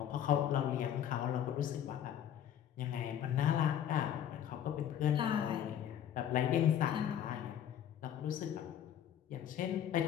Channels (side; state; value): right; quieter; 10.0 dB